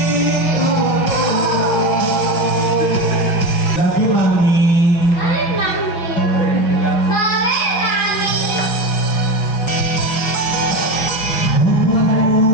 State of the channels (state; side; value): late; right; 5.8 ms